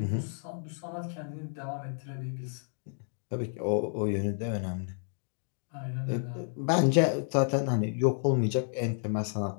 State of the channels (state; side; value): silent; right; digital silence